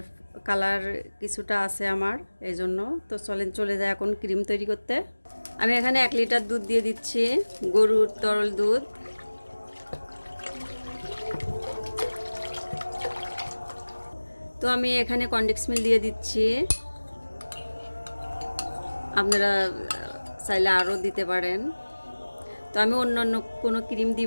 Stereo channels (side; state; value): both; inverted; correlation -1.00